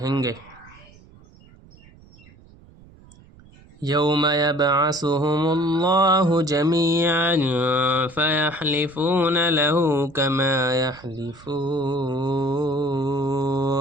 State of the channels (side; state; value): right; noise; rumble, 25 dB below the sound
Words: گے۔ یوم یبعثهم اللہ جمیعا فیحلفون له